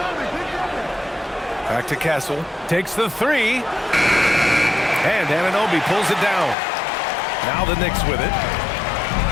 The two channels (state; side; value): drops out; right; at 6.6 s